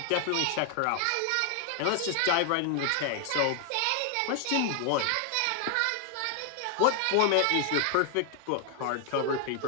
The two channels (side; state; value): both; different; correlation 0.00